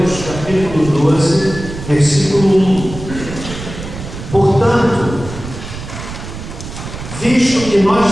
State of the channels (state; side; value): noise; right; rumble, 11 dB below the sound